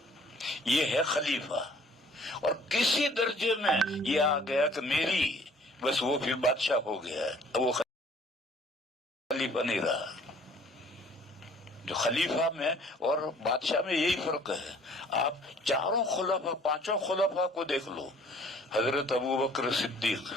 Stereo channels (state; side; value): normal; both; correlation 0.55